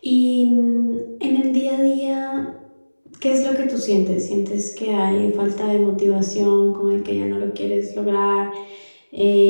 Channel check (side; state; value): both; inverted; correlation -1.00